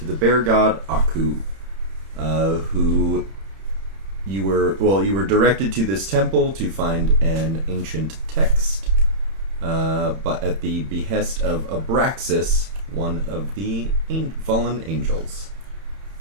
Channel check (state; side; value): late; left; 31 ms